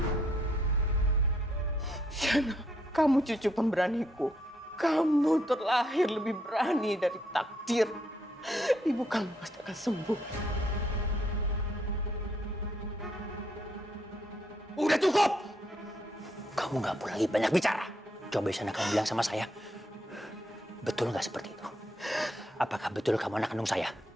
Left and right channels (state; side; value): normal; both; correlation 0.73